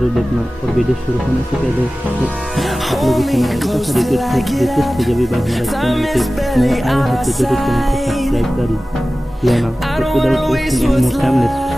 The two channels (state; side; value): normal; both; correlation 0.96